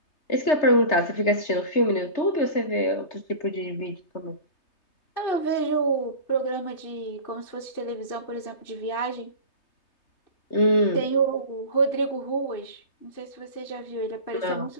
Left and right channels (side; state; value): right; late; 3.3 ms